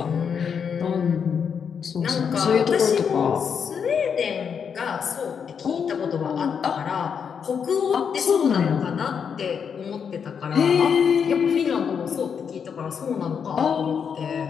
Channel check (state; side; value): quieter; right; 6.9 dB